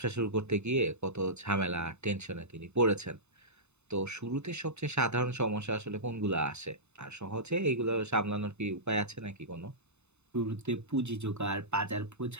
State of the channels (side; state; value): left; late; 0.82 ms